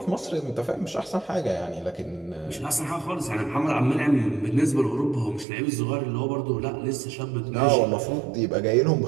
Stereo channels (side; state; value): left; drops out; at 5.5 s